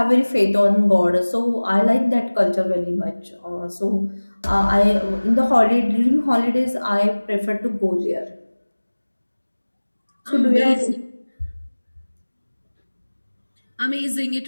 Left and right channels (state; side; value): inverted; both; correlation -1.00